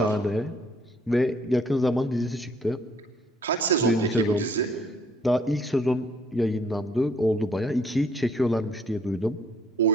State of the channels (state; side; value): normal; both; correlation 0.64